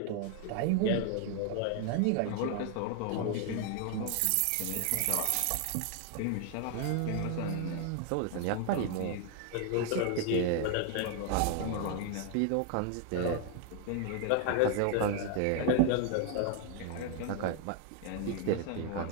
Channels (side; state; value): both; different; correlation 0.00